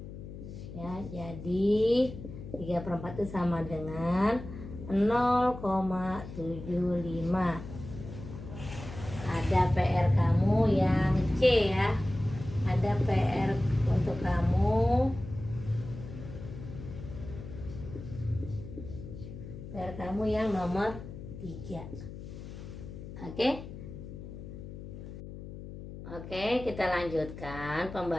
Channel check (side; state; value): left; noise; hum, 11 dB below the sound